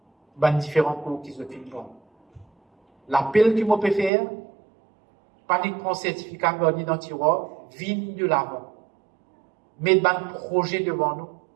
les différents cours qu'ils ont fait. L'appel qu'ils m'ont fait faire, panique prend certificat dans le tiroir, vigne de l'avant. Mettre un projet devant nous.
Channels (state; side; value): drops out; left; at 4.1 s